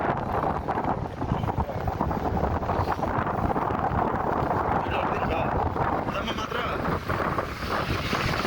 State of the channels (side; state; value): both; identical; correlation 1.00